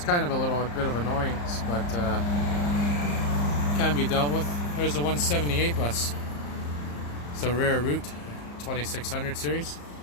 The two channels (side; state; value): right; late; 34 ms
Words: kind of a bit of annoyance, but can be dealt with. There's the 178 bus. It's a rare route, 2600 series.